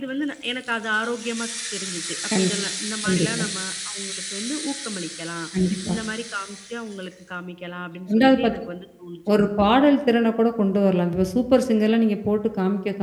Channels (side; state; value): both; identical; correlation 1.00